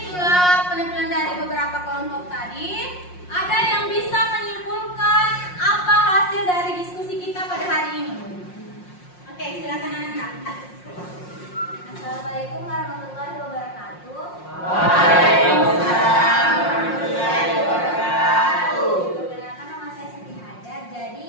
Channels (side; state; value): right; late; 5.6 ms